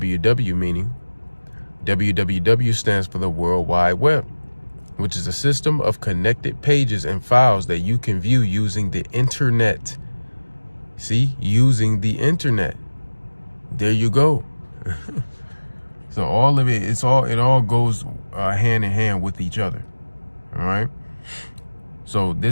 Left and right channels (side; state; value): both; inverted; correlation -1.00